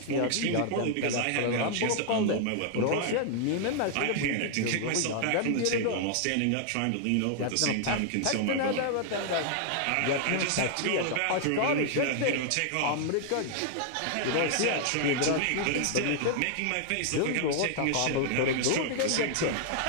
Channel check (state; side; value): different; both; correlation 0.00